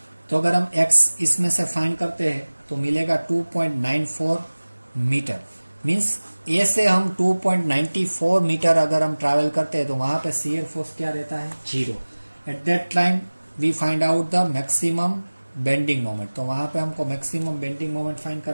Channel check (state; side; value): inverted; both; correlation -1.00